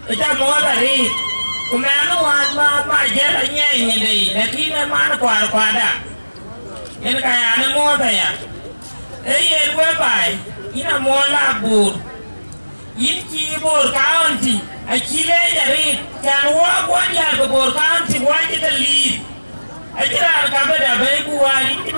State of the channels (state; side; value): inverted; both; correlation -1.00